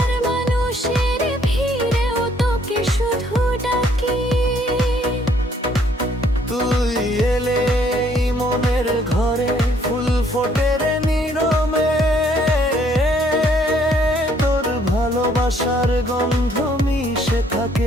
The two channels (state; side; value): normal; both; correlation 0.65